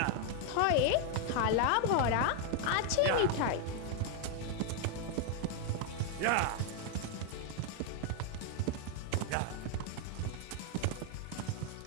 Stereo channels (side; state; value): both; different; correlation 0.01